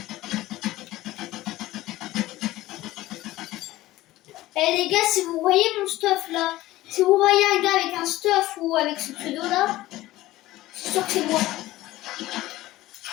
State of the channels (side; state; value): right; quieter; 16.7 dB